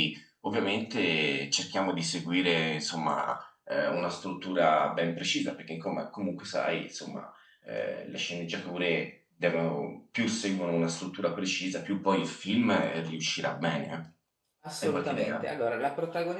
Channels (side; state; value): both; identical; correlation 1.00